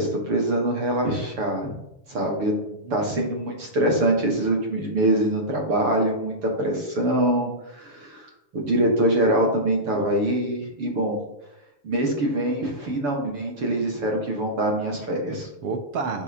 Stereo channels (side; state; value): left; late; 7.0 ms